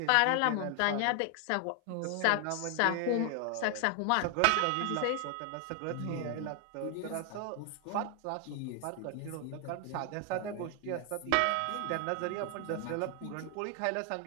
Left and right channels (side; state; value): both; different; correlation 0.00